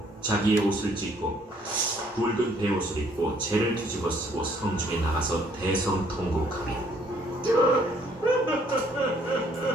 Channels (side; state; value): both; normal; correlation 0.63